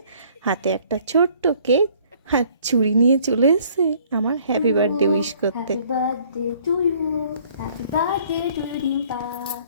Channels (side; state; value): both; inverted; correlation -0.59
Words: হাতে একটা ছোট্ট কেক আর চুড়ি নিয়ে চলে এসেছে আমার হ্যাপি বার্থডে উইশ করতে। Happy birthday to you. Happy birthday to Dimpa.